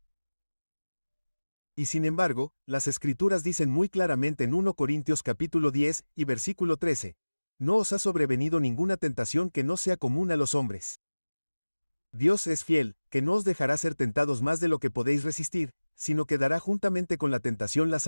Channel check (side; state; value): both; inverted; correlation -1.00